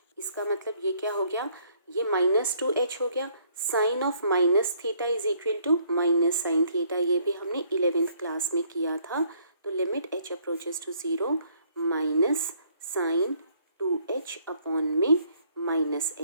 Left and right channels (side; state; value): both; inverted; correlation -0.65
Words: इसका मतलब ये क्या हो गया, ये -2h हो गया। Sine of minus theta is equal to minus sine theta, ये भी हमने 11th क्लास में किया था। तो limit h approaches to 0 minus sine 2h upon में माइनस